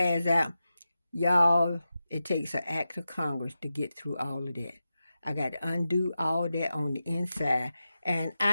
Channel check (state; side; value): inverted; both; correlation -0.91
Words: out, y'all, it takes an act of Congress to get through all of that. I got to undo all of that on the inside. And